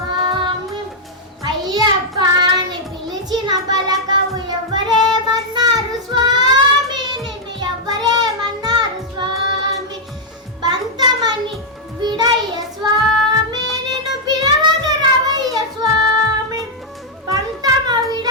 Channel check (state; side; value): normal; both; correlation -0.04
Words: అయ్యప్ప అని పిలిచిన పలకవు ఎవరేమన్నారు స్వామి, నిన్ను ఎవరేమన్నారు స్వామి. బంతమని విడయ్య స్వామి, నిన్ను పిలవగరవయ్య స్వామి. పంతమ